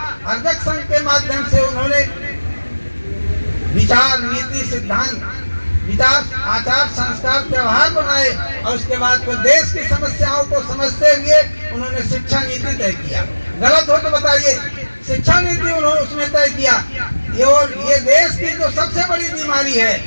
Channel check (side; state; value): both; inverted; correlation -1.00